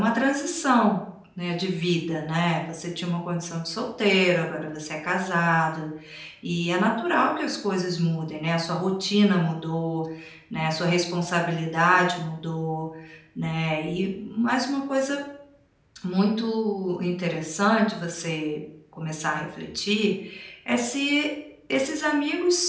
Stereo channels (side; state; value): both; identical; correlation 1.00